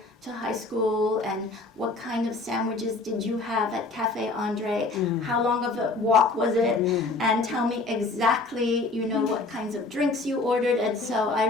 to high school? And what kind of sandwiches did you have at Cafe Andre? How long of a walk was it? And tell me exactly, what kinds of drinks you ordered. And so I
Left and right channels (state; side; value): quieter; right; 3.4 dB